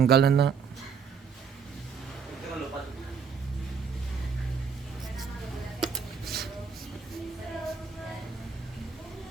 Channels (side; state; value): left; quieter; 6.0 dB